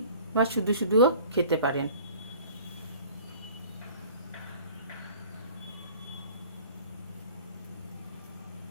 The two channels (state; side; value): inverted; both; correlation -0.47